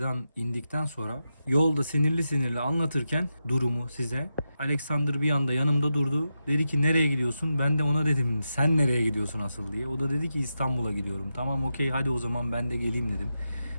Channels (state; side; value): inverted; both; correlation -0.88